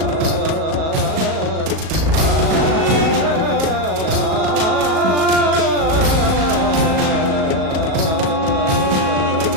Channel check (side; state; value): left; late; 37 ms